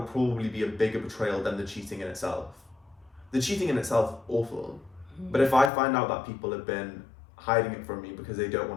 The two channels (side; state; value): right; drops out; at 5.7 s